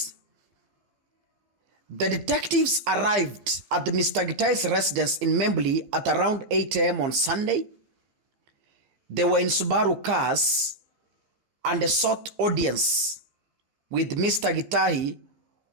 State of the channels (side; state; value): left; late; 15 ms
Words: the detectives arrived at Mr. Gitai's residence in Membley at around 8 a.m. on Sunday. They were in Subaru cars and sought audience with Mr. Gitai